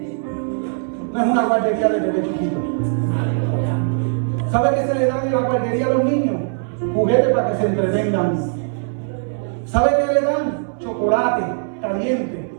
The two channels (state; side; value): silent; left; 66 dB below the other